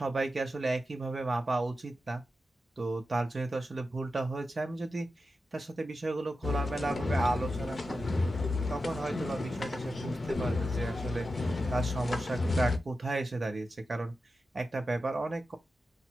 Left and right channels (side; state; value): both; normal; correlation 0.90